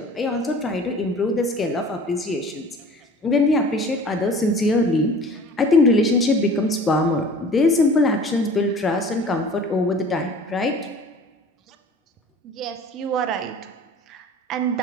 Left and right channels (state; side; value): normal; both; correlation 0.44